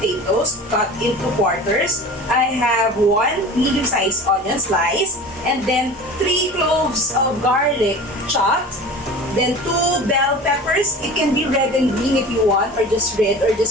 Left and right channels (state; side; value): normal; both; correlation 0.38